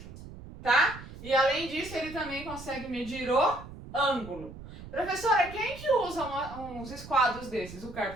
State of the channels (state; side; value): noise; right; rumble, 14 dB below the sound